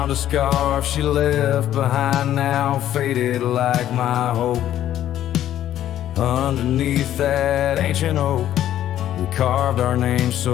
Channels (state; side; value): quieter; right; 11.9 dB